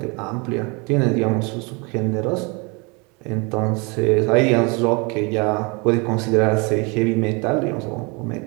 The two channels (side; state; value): left; quieter; 29.8 dB